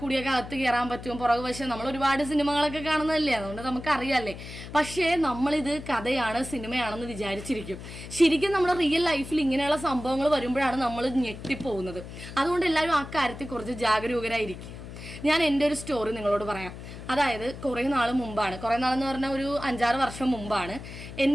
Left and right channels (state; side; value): noise; left; hum, 12 dB below the sound